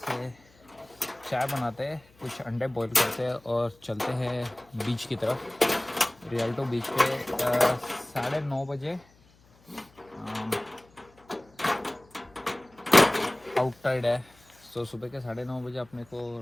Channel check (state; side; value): noise; left; hum, 29 dB below the sound